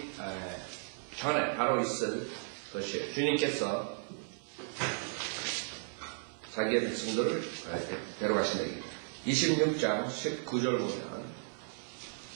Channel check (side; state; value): left; silent; 55 dB below the other